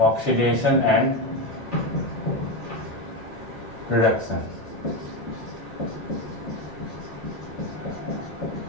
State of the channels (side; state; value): both; normal; correlation 0.13